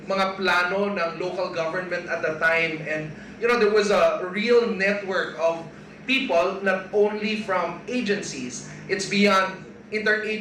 mga plano ng local government at the time. And, there was a real network of people, not only from agencies, it's beyond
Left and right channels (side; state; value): both; identical; correlation 1.00